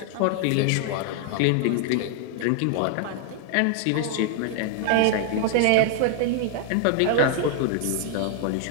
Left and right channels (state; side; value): different; both; correlation 0.00